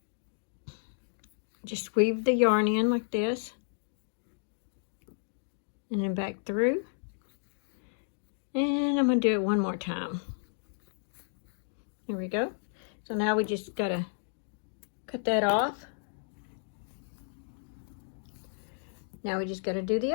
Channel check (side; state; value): right; silent; digital silence